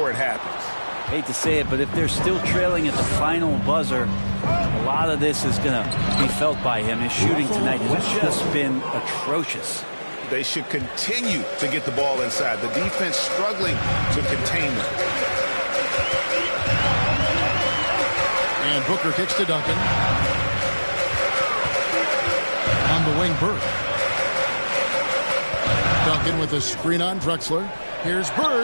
it happens. Hate to say it, but if they're still trailing at the final buzzer, a lot of this is going to be felt by him. His shooting tonight has just been atrocious. They should continue to get the ball inside. The defense struggling to contain them. And Booker kicks to Duncan. On the wing, Bird. Duncan with a screen on Drexler. Here's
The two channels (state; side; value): inverted; both; correlation -1.00